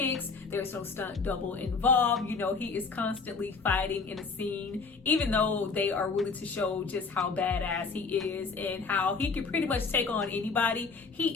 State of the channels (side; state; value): right; quieter; 4.6 dB